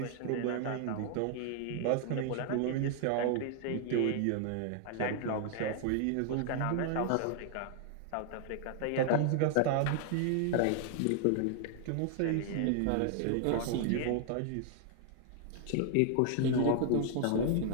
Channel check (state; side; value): different; both; correlation 0.00